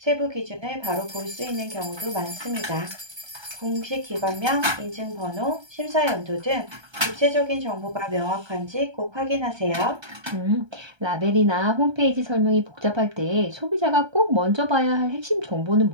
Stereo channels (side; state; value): left; late; 1.3 ms